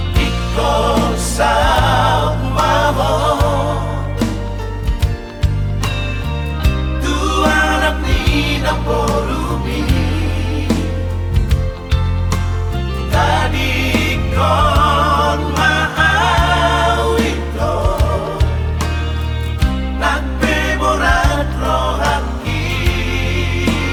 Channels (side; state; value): both; identical; correlation 1.00